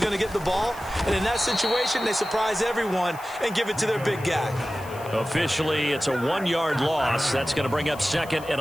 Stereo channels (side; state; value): left; noise; hiss, 20 dB below the sound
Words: going to get the ball? And in that situation, they surprise everyone and give it to their big guy. Officially, it's a 1-yard loss. That's going to bring up 2nd and